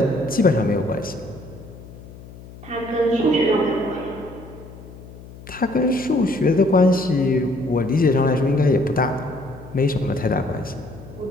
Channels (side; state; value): left; noise; hum, 17 dB below the sound